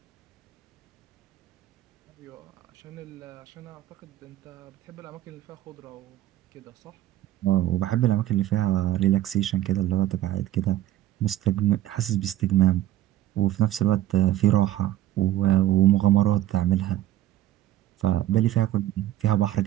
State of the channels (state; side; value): quieter; left; 13.9 dB